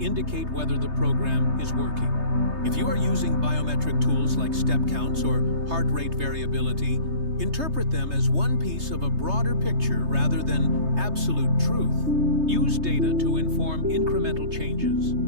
indicate whether the program is working. If you are using biometric tools like step counts or heart rate variability, interpret them as one piece of a broader picture rather than absolute truth. Use data to inform incremental changes.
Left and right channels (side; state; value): left; late; 3.3 ms